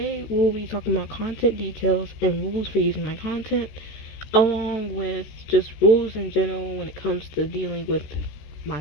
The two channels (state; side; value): late; right; 14 ms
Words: we'll be talking about content details and rules for using my content, along with just rules in general when it comes to dealing with